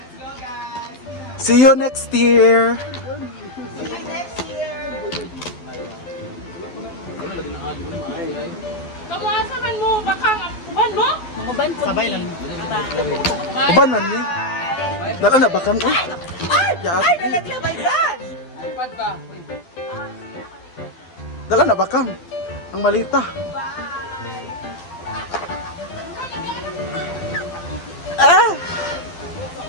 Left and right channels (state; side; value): late; right; 12 ms